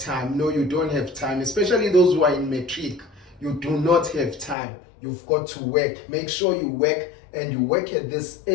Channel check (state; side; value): drops out; right; at 4.5 s